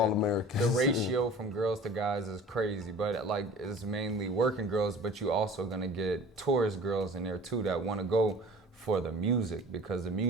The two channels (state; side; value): normal; both; correlation 0.43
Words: Americans. The ratio from girls to guys is crazy, but like it's mainly working girls. But you also gonna get tourist girls in there too that want to go for the music because the